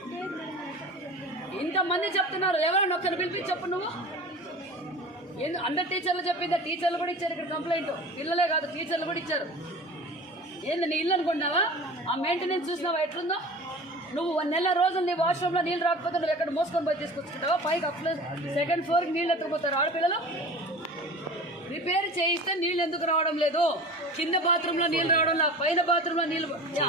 ఇంతమంది చెప్తున్నారు, ఎవరైనా ఒక్కరిని పిలిపించి చెప్పు నువ్వు. అందరు టీచర్లు చెప్పిందా? టీచర్లు కూడా ఇచ్చారు ఇక్కడ కంప్లైంట్. పిల్లలే కాదు, టీచర్లు కూడా ఇచ్చారు. ఏంది నీ ఇల్లు అనుకుంటున్నావా? ఆ మెయింటెనెన్స్ చూసినావా ఎట్లుందో? నువ్వు 1 నెల రోజులు నీ వాష్రూమ్లో నీళ్ళు రాకపోతే నువ్వు ఎక్కడ మోసుకొని పోయి తీసుకొచ్చుకుంటావా? పైకి సెకండ్ ఫ్లోర్కి నీళ్ళు ఎత్తుకుపోతారు ఆడపిల్లలు. రిపేర్ చేయిస్తే నీళ్ళు ఎందుకు రావడం లేదు? కింద బాత్రూంలో నీళ్ళు రావడం లేదు, పైన బాత్రూంలో నీళ్ళు.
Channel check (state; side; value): normal; both; correlation 0.38